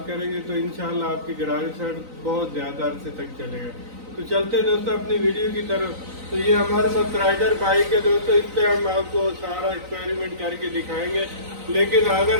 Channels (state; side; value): late; left; 3.9 ms